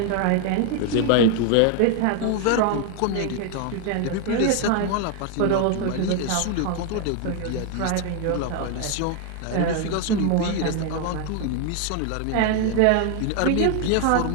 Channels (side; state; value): both; different; correlation 0.00